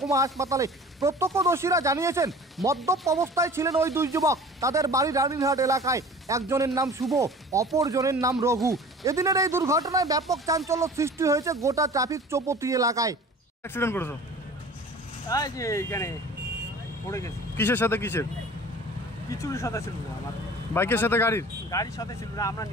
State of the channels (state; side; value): normal; both; correlation 0.43